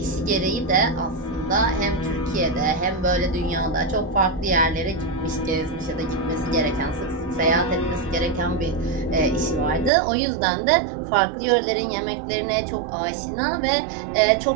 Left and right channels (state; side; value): drops out; left; at 9.9 s